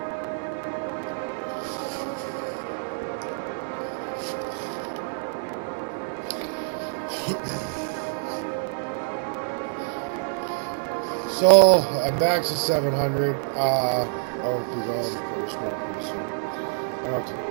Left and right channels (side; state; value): left; silent; digital silence